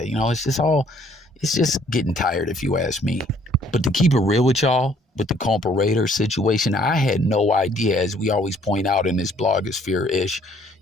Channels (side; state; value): both; normal; correlation 0.61